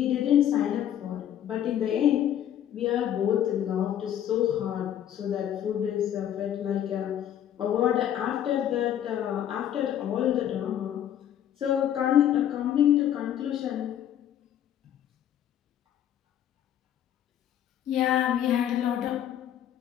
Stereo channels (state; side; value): quieter; right; 10.6 dB